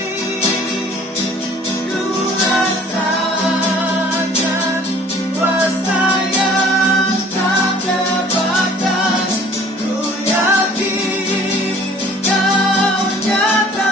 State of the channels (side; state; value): both; normal; correlation 0.52